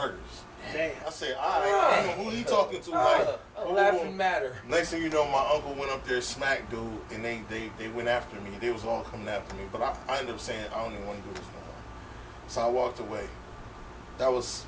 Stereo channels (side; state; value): both; identical; correlation 1.00